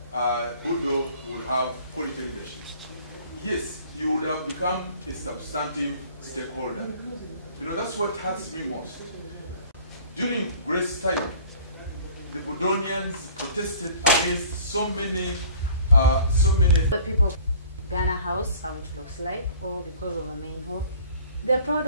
Budo will have quality leadership? Yes, you would have become a substantive stakeholder. You know, that's what hurts me most. During Grace's time, the Budonians protested against so many. The people, Ghana House, how it looks like, or because of the main hall, they're proud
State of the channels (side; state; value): both; inverted; correlation -0.49